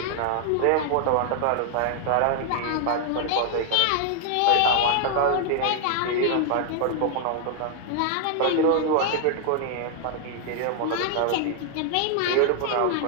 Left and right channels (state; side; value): different; both; correlation 0.00